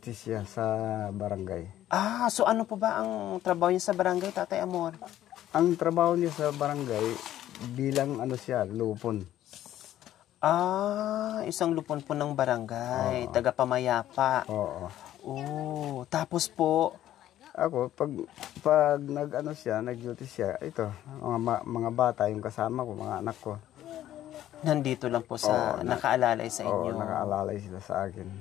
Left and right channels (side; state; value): right; quieter; 12.7 dB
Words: siya sa barangay. Ah, so ano po ba ang trabaho niya sa barangay, Tatay Amor? Ang trabaho niya sa barangay, bilang ano siya, lupon. Ah, isang lupon po ng barangay, taga-pamayapa. Oo. Oh, tapos po, Ako, pag nag-ano siya, nag-duty siya, ito, mga bata, yung kasama ko, mga anak ko. nandito lang po sa, nakaalalay sa Oo, inyo. nakaalalay sila sa akin.